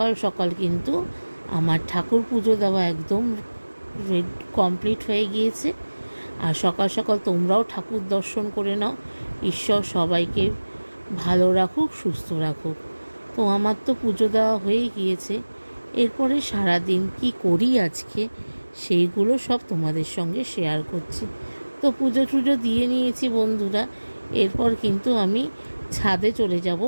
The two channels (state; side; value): inverted; both; correlation -1.00